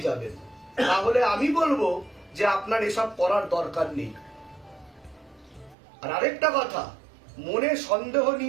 যাবেন। তাহলে আমি বলবো যে আপনার এসব করার দরকার নেই। আর আরেকটা কথা, মনে সন্দেহ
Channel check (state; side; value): drops out; left; at 5.8 s